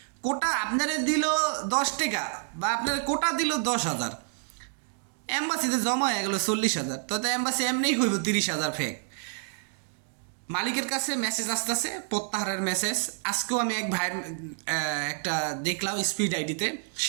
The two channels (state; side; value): silent; left; 59 dB below the other